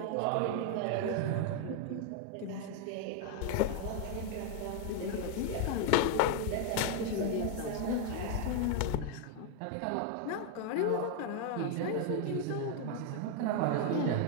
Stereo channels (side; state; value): both; different; correlation 0.01